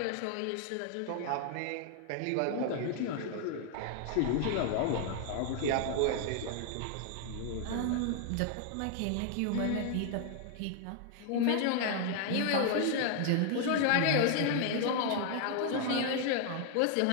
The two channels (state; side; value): different; both; correlation 0.00